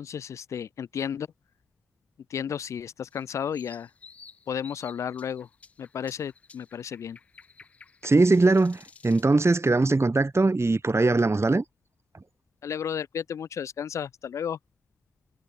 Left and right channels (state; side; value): normal; both; correlation 0.86